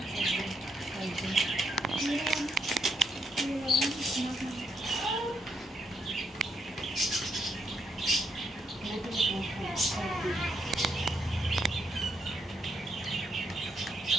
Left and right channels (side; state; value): both; normal; correlation 0.77